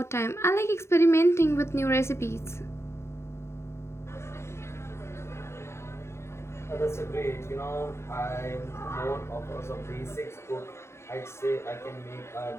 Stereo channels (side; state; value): right; late; 0.13 ms